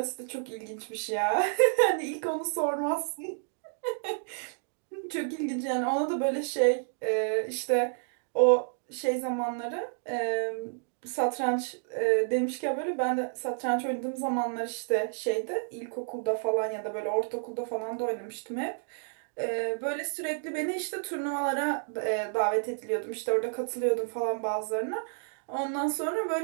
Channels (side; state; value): left; silent; digital silence